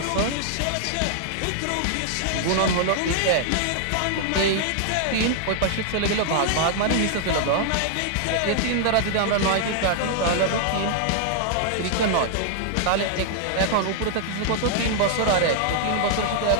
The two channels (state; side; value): different; both; correlation -0.01